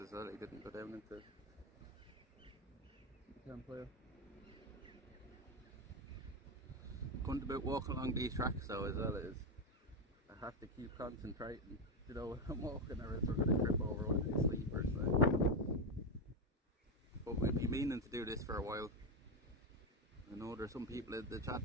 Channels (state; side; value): normal; both; correlation 0.10